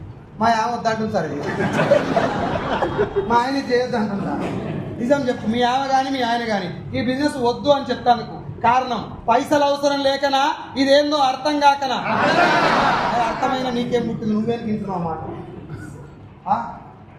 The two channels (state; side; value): identical; both; correlation 1.00